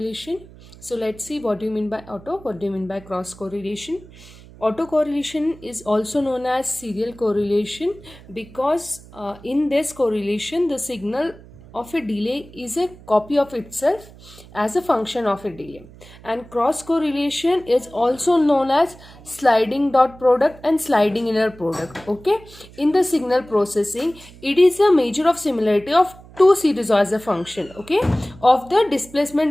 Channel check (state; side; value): noise; right; hum, 21 dB below the sound